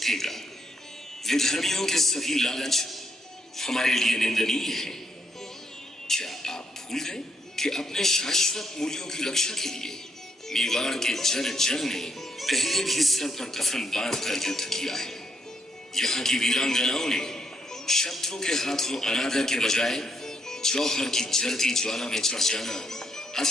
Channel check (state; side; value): normal; both; correlation 0.77